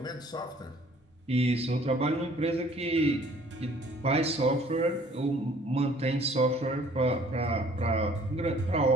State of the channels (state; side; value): normal; both; correlation 0.56